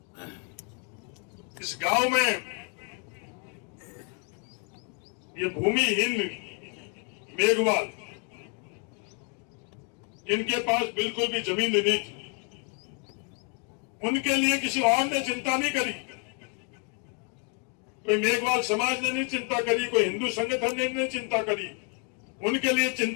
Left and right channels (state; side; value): quieter; right; 35.7 dB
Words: इस गांव में ये भूमिहीन मेघवाल, इनके पास बिल्कुल भी जमीन नहीं थी, उनके लिए किसी और ने चिंता नहीं करी। कोई मेघवाल समाज ने नहीं चिंता करी, कोई हिंदू संगठन ने नहीं चिंता करी, उनके लिए